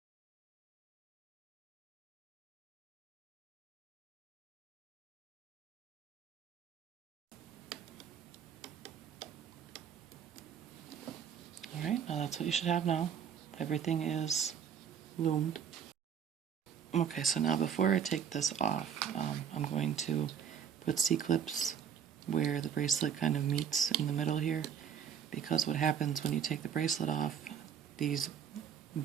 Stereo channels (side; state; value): left; quieter; 8.1 dB